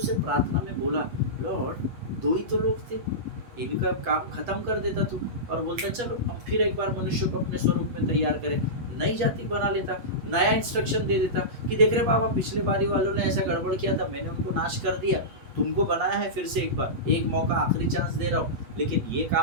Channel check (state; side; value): late; left; 8.4 ms